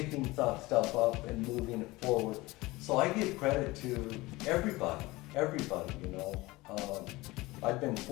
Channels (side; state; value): right; quieter; 20.8 dB